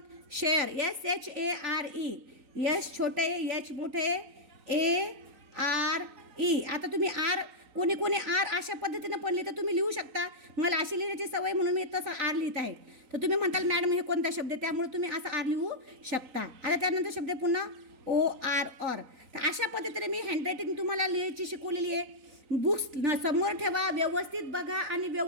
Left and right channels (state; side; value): late; left; 3.9 ms